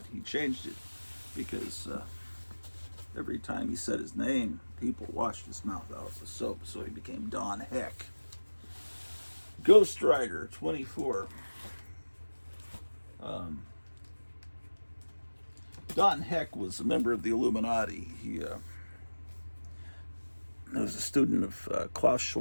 he changed it because every time he said his name, people washed his mouth out with soap, so he became Don Heck. Ghost Rider 24. Don Heck was a member of the Illuminati. He was a student of Klaus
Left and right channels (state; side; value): inverted; both; correlation -1.00